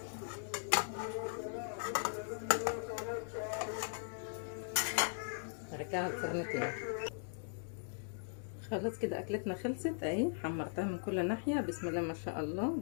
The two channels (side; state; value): right; silent; digital silence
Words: ارجعها الفرن تاني. خلاص كده اكلتنا خلصت اهي، حمرتها من كل ناحيه بسم الله ما شاء الله